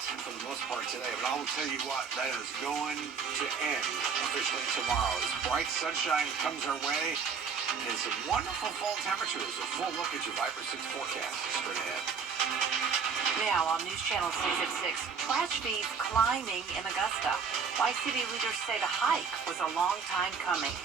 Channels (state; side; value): quieter; left; 5.9 dB